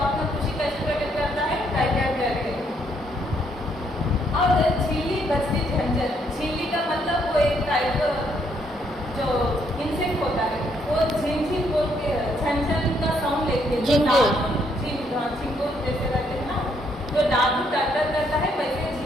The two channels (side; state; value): both; normal; correlation 0.71